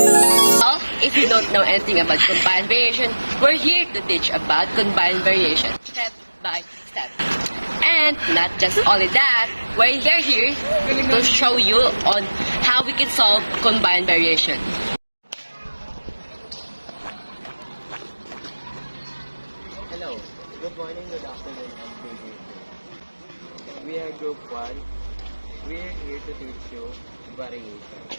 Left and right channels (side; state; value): both; inverted; correlation -1.00